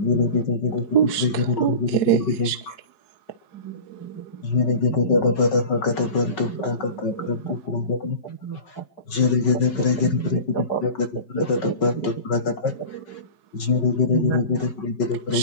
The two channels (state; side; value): late; right; 4.7 ms